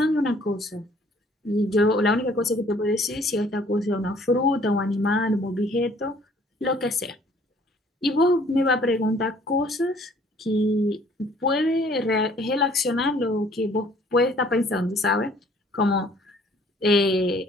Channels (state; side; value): normal; both; correlation 0.58